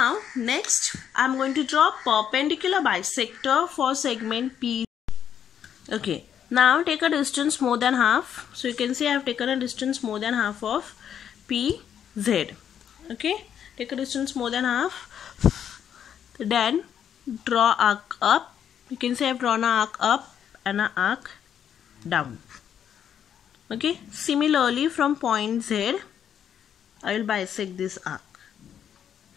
next I am going to draw perpendicular bisector for segment P. Okay, now take a distance more than half. So you can see I have taken a distance more than half of PZ. Okay, take a distance more than half. Then draw arc up. You can see I have drawn an arc up and an arc down. Okay, similarly from point Z I will bisect this arc.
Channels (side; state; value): right; quieter; 8.9 dB